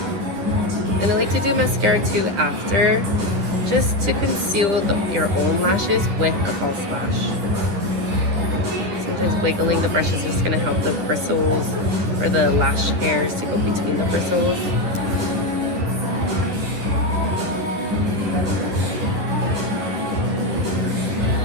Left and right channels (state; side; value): late; left; 10 ms